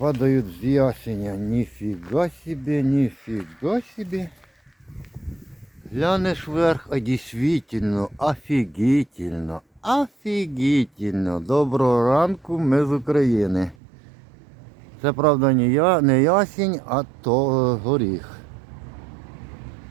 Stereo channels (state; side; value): drops out; left; at 13.8 s